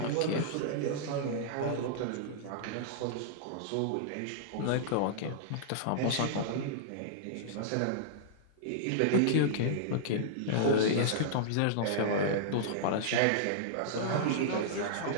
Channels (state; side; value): different; both; correlation -0.02